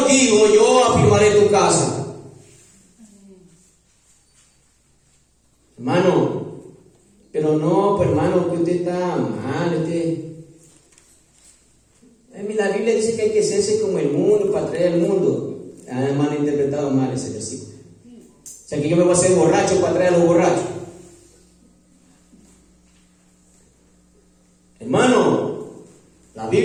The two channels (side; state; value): both; identical; correlation 1.00